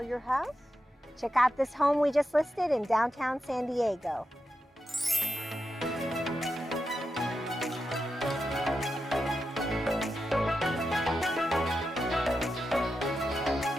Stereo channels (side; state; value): both; normal; correlation 0.89